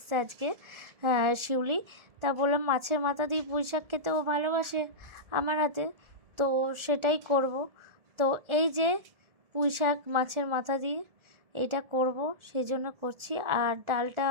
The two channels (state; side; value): late; left; 1.4 ms